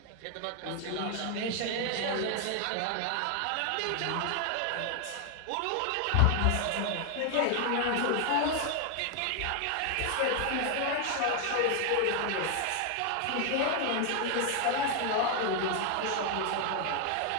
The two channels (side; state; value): both; different; correlation 0.00